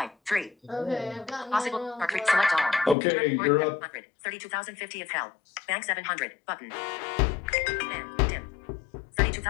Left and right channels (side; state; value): right; drops out; at 3.0 s